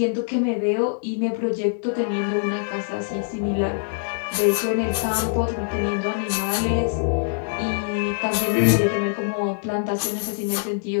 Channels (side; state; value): right; silent; digital silence